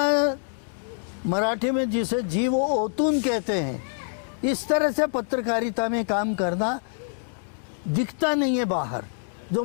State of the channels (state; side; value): silent; right; digital silence